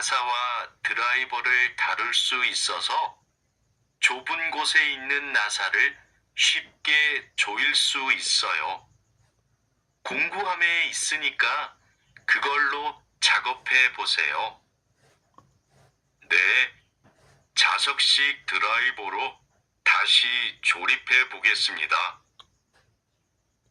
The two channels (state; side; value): identical; both; correlation 1.00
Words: 드라이버를 다룰 수 있어서 좁은 곳에 있는 나사를 쉽게 조일 수 있어요. 공구함에 있으니까 그걸로 작업해 보세요. 네, 자석식 드라이버로 다시 조립해 보겠습니다.